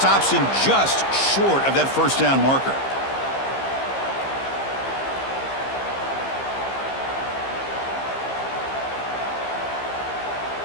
him just short of that first down marker.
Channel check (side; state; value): right; late; 15 ms